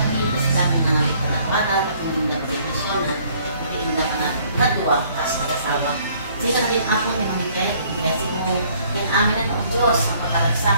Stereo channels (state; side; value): inverted; both; correlation -0.61